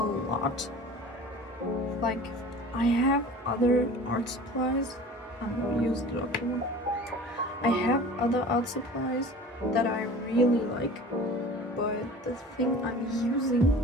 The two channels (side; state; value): both; normal; correlation 0.41